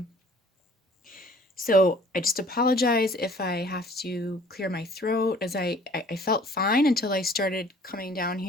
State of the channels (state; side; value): normal; both; correlation 0.53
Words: So I just apologize if I have to clear my throat, as I felt fine until I started coming down